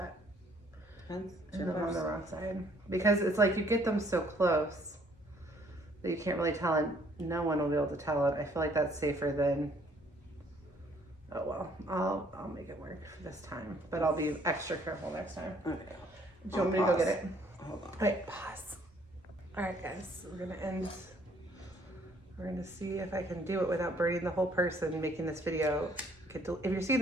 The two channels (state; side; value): normal; both; correlation 0.63